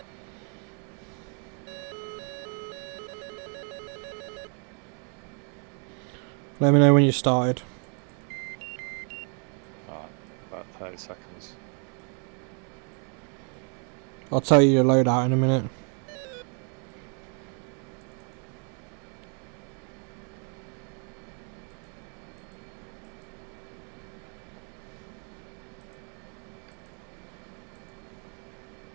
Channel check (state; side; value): quieter; left; 39.5 dB